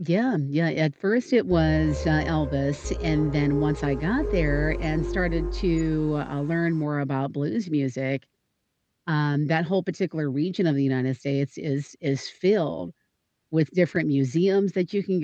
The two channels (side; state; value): both; identical; correlation 1.00